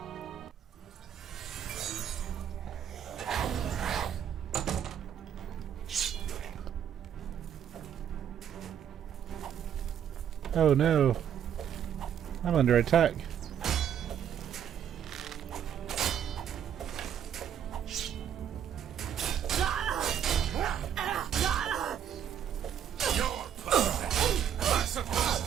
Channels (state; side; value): quieter; left; 9.2 dB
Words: Oh no. I'm under attack.